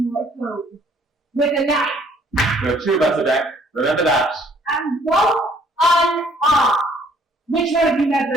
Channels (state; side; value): normal; both; correlation 0.61